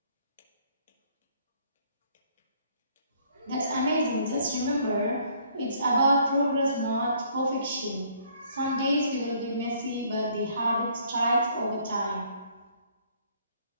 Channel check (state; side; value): inverted; both; correlation -0.62